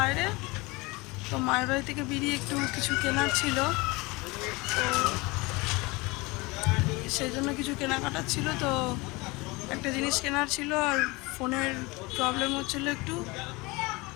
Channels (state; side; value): quieter; right; 24.3 dB